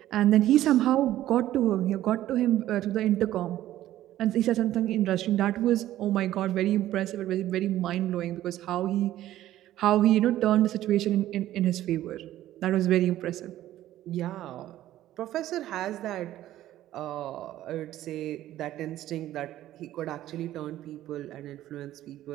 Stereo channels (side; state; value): left; quieter; 13.7 dB